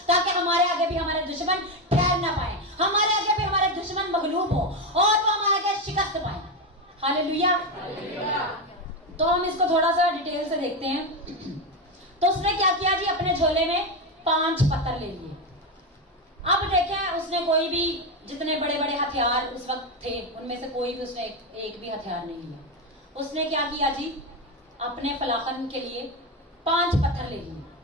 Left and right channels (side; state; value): both; normal; correlation 0.12